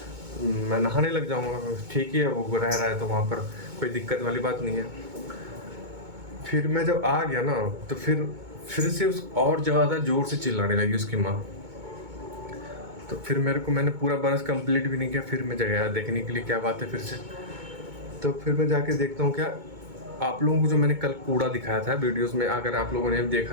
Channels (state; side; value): late; left; 2.2 ms